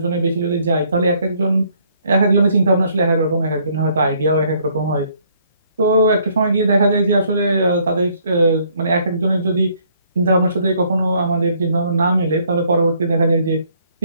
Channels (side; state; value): both; inverted; correlation -0.65